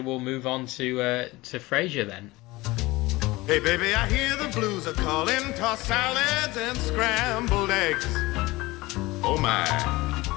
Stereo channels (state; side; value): quieter; right; 20.7 dB